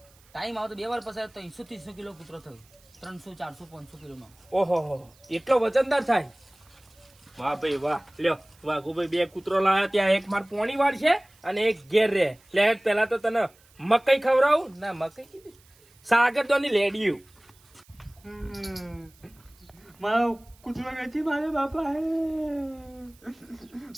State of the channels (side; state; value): right; noise; hiss, 29 dB below the sound